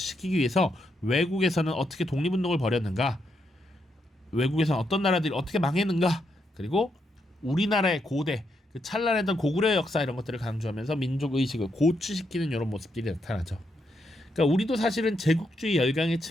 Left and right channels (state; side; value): normal; both; correlation 0.80